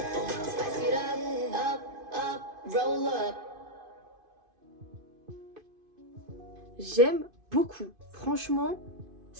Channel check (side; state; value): left; late; 2.5 ms